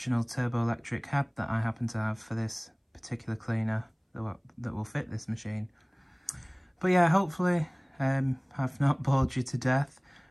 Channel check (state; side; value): identical; both; correlation 1.00